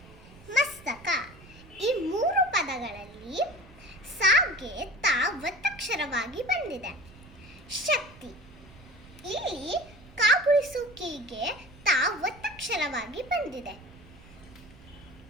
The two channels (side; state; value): right; noise; rumble, 21 dB below the sound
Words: ಮಸ್ತಕ. ಈ 3 ಪದಗಳಲ್ಲಿ ಸಾಗೆ ತ ಒತ್ತಕ್ಷರವಾಗಿ ಬಂದಿದೆ. ಶಕ್ತಿ, ಇಲ್ಲಿ ಕಾಗುಳಿಸುವಿಕೆಗೆ ತ ಒತ್ತಕ್ಷರವಾಗಿ ಬಂದಿದೆ.